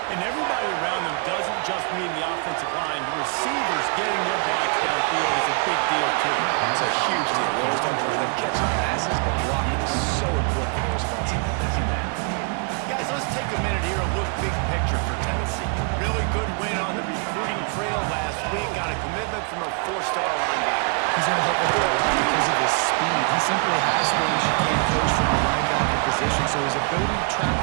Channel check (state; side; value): quieter; left; 37.2 dB